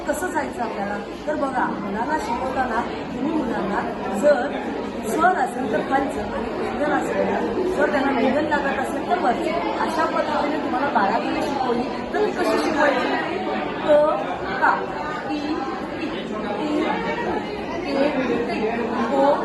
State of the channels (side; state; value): both; identical; correlation 1.00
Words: कसं जायचं आपल्याला, तर बघा मुलांना शिकवताना तुम्ही मुलांना जर स्वर असेल तर खालचं आणि व्यंजन असेल, जर त्यांना व्यंजन लागत असेल तर वरचं, अशा पद्धतीने तुम्हाला बारावीने शिकवली तर कशी शिकवायची, का